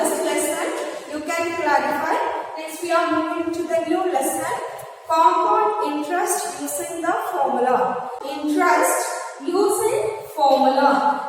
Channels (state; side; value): identical; both; correlation 1.00